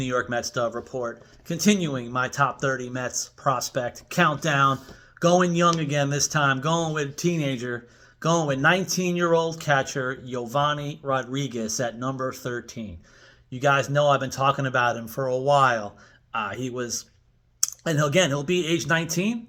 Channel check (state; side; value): identical; both; correlation 1.00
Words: York Mets Dove Report, continuing my top 30 Mets prospect countdown. Going young again this time, going with teenager, going with 19-year-old catcher Yovanny Rodriguez at number 13. You guys know I've been talking about him for a while. He'll be age 19